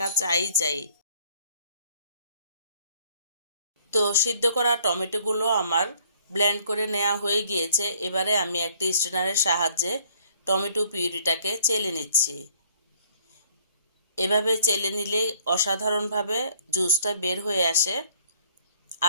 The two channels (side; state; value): both; inverted; correlation -0.61